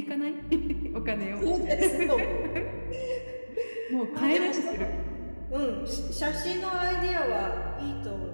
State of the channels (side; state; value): both; inverted; correlation -1.00